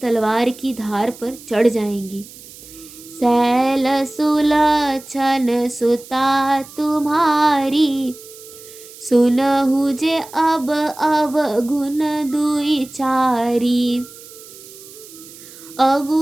की धार पर चढ़ जाएंगी। सैल सुलक्षण सुता तुम्हारी। सुनहु जे अब अवगुण दुई चारी।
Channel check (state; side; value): noise; right; hiss, 19 dB below the sound